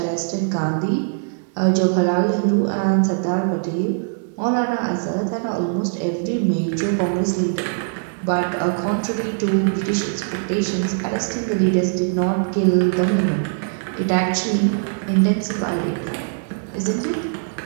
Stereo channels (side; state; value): left; silent; digital silence